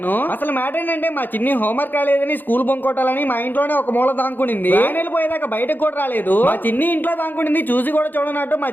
అసలు మ్యాటర్ ఏంటంటే మా చిన్ని హోంవర్క్ రాలేదని స్కూల్ బంక్ కొట్టాలని మా ఇంట్లోనే ఒక మూల దాంకునింది. వెళ్ళిపోయేదాకా బయటకు కూడా రాలేదు. మా చిన్ని ఇంట్లో దాంకునింది, చూసి కూడా చూడనట్టు మా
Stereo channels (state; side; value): late; right; 0.089 ms